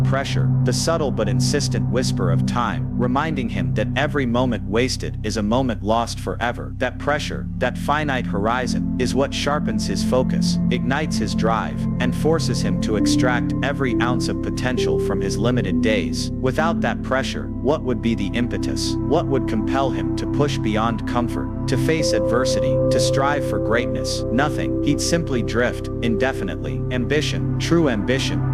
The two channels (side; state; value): both; identical; correlation 1.00